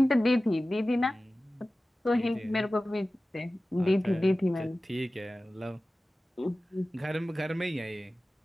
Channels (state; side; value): normal; both; correlation 0.96